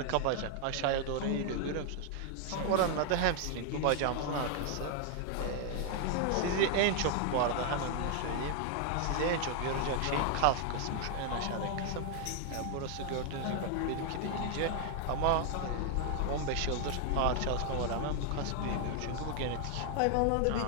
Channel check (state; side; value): different; both; correlation 0.00